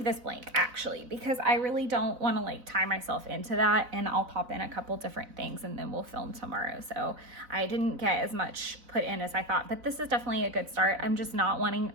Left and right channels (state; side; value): late; left; 4.0 ms